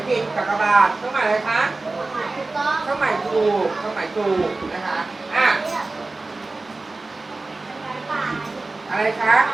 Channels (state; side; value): quieter; left; 3.3 dB